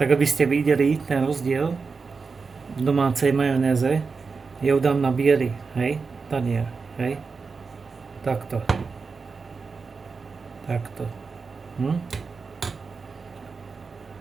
aby ste videli ten rozdiel v domácej majonéze, ja ju dám na biely, hej, tanier, hej. Takto. Takto.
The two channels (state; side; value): quieter; left; 4.8 dB